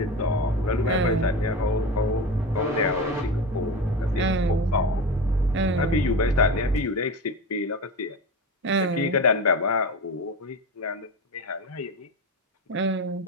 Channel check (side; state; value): both; normal; correlation 0.25